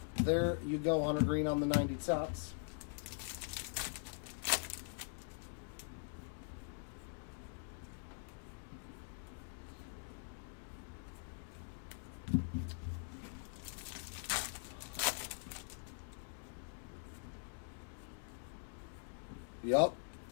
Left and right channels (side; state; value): right; silent; digital silence